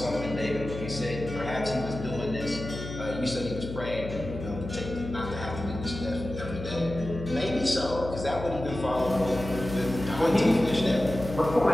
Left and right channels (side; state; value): left; noise; hum, 8 dB below the sound